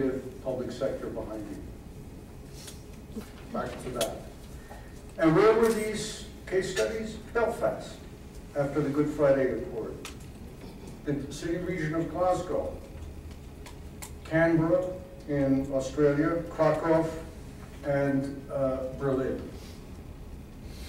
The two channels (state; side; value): identical; both; correlation 1.00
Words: public sector behind you. Back to that. And where were these case studies? Belfast, after the Good Friday Accord. The city region of Glasgow. Canberra in Australia. Krakow and Berlin